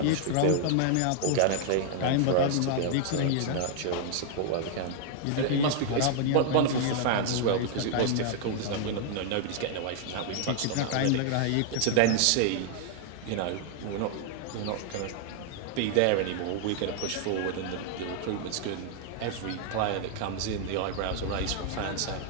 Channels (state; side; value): different; both; correlation 0.00